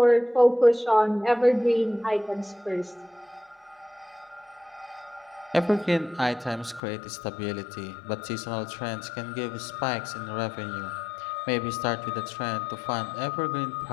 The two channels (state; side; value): drops out; right; at 6.8 s